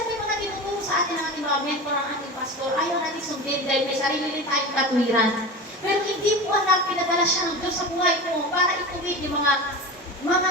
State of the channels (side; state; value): both; normal; correlation 0.29